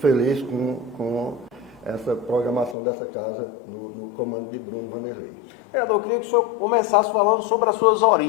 com essa programação dessa casa no comando de Bruno Vanderlei. Vereador, eu queria que o senhor começasse falando sobre as suas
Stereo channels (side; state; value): right; drops out; at 2.8 s